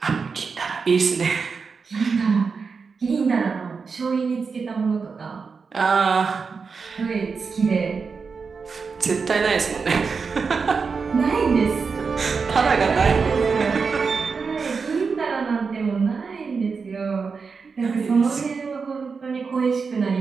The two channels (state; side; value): quieter; left; 5.2 dB